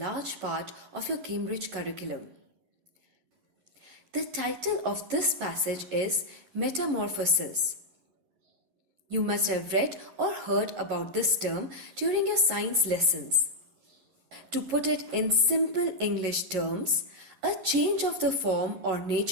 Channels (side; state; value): left; late; 11 ms